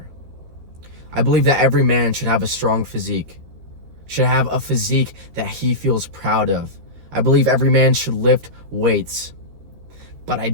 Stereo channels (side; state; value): left; late; 13 ms